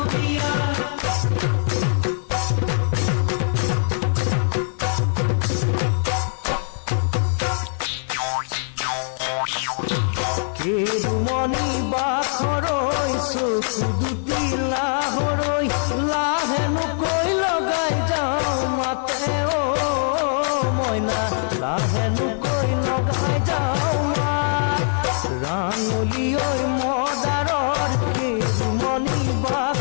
বিয়া কেরুমণি বাখৰৈ চকু দুটি লাহৰৈ লাহেনুকৈ লগাই যাওঁ মাতে অ মইনা লাহেনুকৈ লগাই যাওঁ মাত ৰাণলী ঐ মদাৰৰ কেৰুমণি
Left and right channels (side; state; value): right; silent; digital silence